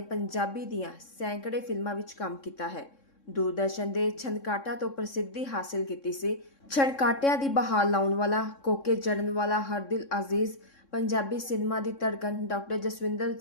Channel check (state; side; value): late; right; 3.6 ms